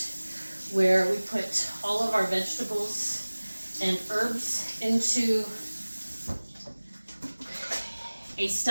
where we put all of our vegetables and herbs into a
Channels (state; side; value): inverted; both; correlation -1.00